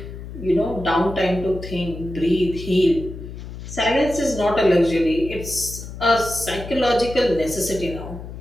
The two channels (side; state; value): left; noise; hum, 11 dB below the sound